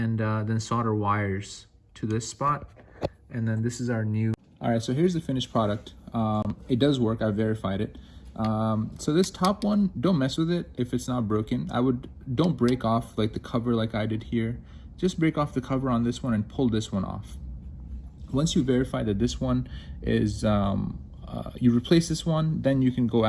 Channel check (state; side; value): identical; both; correlation 1.00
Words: then solder wires to this spot, and then this is our new. All right, so here's the finished product. It does work. I verified it. So this top one, don't mess with it if it's not broken. Don't break off like the cover like I did here. Just break off the cover on this one and pull this one off. Once you verify that this one is, you replace this one, then you can go